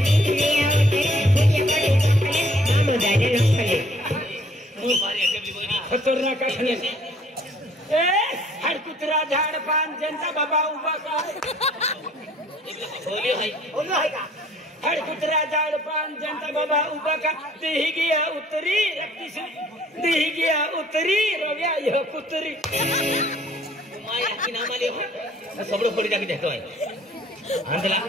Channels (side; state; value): both; normal; correlation 0.58